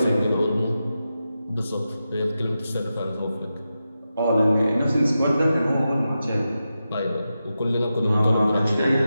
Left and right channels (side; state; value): both; inverted; correlation -0.90